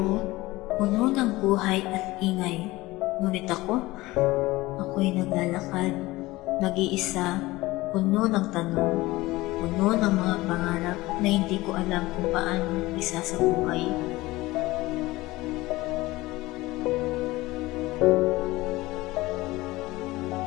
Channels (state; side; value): quieter; right; 19.5 dB